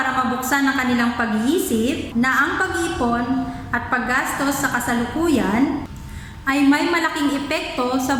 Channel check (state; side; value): identical; both; correlation 1.00